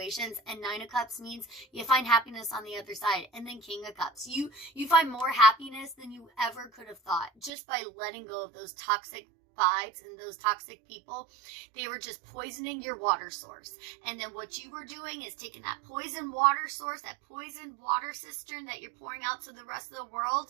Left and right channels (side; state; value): left; drops out; at 7.5 s